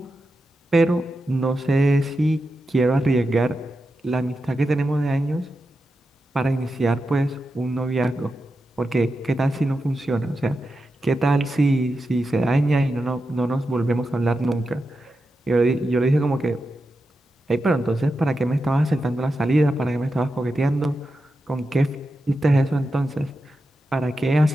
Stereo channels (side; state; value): both; normal; correlation 0.89